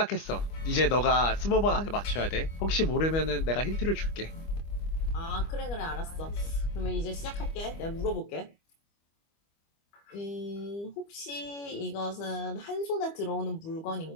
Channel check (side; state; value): right; late; 25 ms